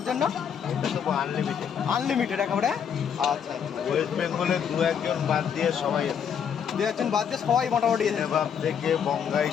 জন্য? এটা তো আনলিমিটেড। আনলিমিটেড একেবারে? আচ্ছা আচ্ছা। ওয়েস্ট বেঙ্গলে 2-1 জন বাদ দিয়ে সবাই, 2-1 জন বাদ দিয়ে সবাই মোটামুটি এসেছে। নেবাব থেকে বঙ্গাই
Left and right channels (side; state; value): right; quieter; 7.8 dB